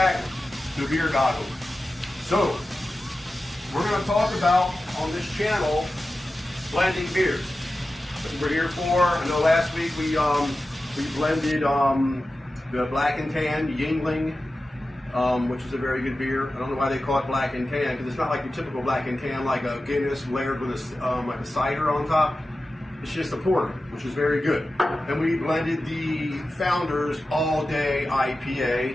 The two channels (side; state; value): both; normal; correlation 0.94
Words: to Beer Goggles. So, we're going to talk about, on this channel, blending beers. That's what we're here for. I know last week we blended the Black and Tan Yuengling, which is a very good beer. I don't know why they call it Black and Tan, because it's not like your typical Black and Tan, like a Guinness layered with like a cider on top. It's just a porter, which is very good. And we blended the Founders All Day